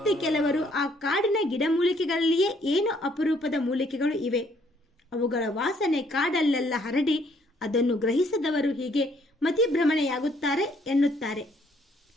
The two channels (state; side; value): normal; both; correlation 0.66